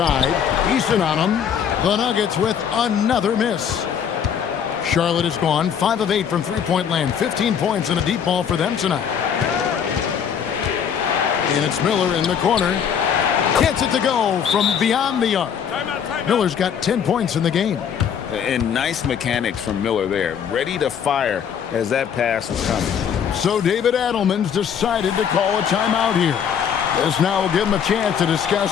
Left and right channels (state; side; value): quieter; right; 7.9 dB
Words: Eason on him. The Nuggets with another miss. Charlotte is gone 5 of 8 from three-point land. 15 points and a deep ball for them tonight. And it's Miller in the corner. Gets it to go from beyond the arc. Miller's got 10 points in the game. And nice mechanics from Miller there. Ready to fire as that pass was coming. So David Adelman's decided to call a timeout here. This now will give him a chance to